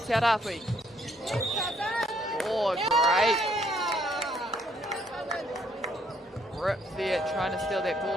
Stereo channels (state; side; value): normal; both; correlation 0.68